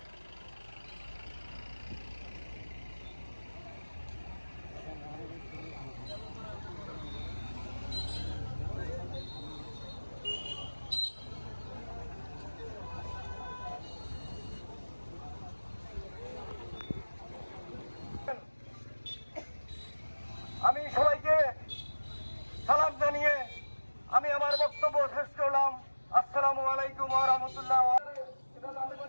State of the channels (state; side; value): inverted; both; correlation -1.00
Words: আমি সবাইকে সালাম জানিয়ে আমি আমার বক্তব্য শেষ করলাম। আসসালামু আলাইকুম ওয়া রাহমাতুল্লাহ। এটা যাতে